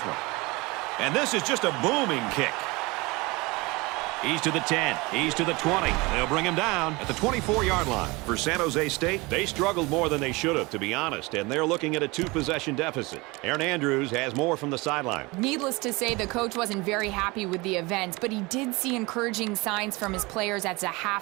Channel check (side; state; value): left; quieter; 24.3 dB